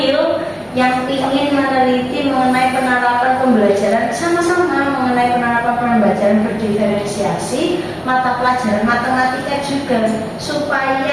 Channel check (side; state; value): both; identical; correlation 1.00